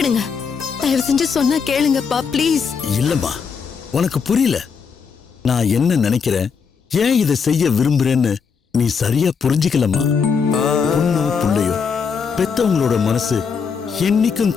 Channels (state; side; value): quieter; right; 6.0 dB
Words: தயவு செஞ்சு சொன்னா கேளுங்கப்பா, ப்ளீஸ். இல்லம்மா, உனக்கு புரியல. நான் என்ன நினைக்கிறேன், ஏன் இதை செய்ய விரும்புறேன்னு நீ சரியா புரிஞ்சுக்கலம்மா. பொண்ணோ புள்ளையோ பெத்தவங்களோட மனசு என்னைக்கும்